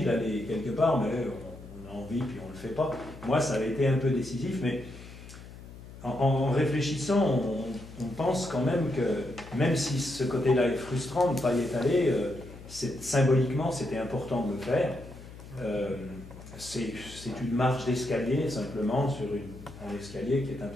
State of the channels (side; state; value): left; noise; hum, 16 dB below the sound